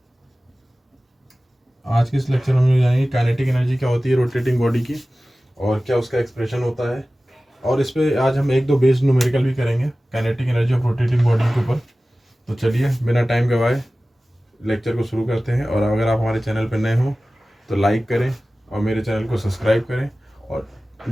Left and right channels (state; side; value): normal; both; correlation 0.96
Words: आज के इस लेक्चर में हम जानेंगे काइनेटिक एनर्जी क्या होती है रोटेटिंग बॉडी की, और क्या उसका एक्सप्रेशन होता है, और इस पे आज हम एक दो बेस्ड न्यूमेरिकल भी करेंगे kinetic energy of rotating body के ऊपर। तो चलिए बिना टाइम गवाए लेक्चर को शुरू करते हैं। और अगर आप हमारे चैनल पर नए हो तो लाइक करें और मेरे चैनल को सब्सक्राइब करें और